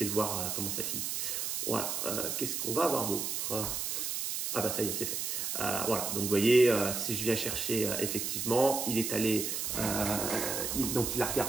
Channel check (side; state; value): right; noise; hiss, 2 dB below the sound